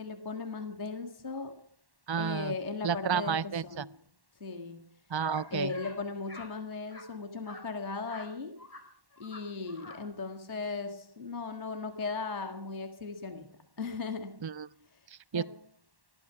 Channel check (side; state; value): left; late; 1.1 ms